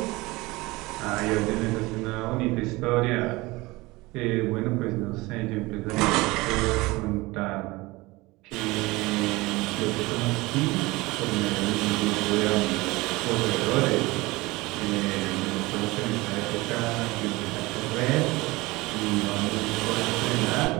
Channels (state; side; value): quieter; left; 21.7 dB